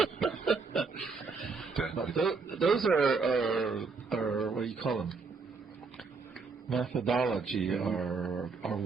But those are what do you call them? Methodology or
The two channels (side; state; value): left; quieter; 4.6 dB